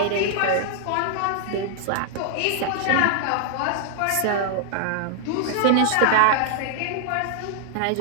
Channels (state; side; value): different; both; correlation -0.01